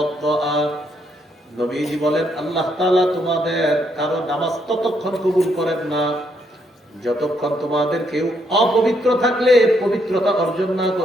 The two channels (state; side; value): normal; both; correlation 0.74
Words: নবীজি বলেন, আল্লাহ তাআলা তোমাদের কারো নামাজ ততক্ষণ কবুল করেন না যতক্ষণ তোমাদের কেউ অপবিত্র থাকলে পবিত্রতা অর্জন না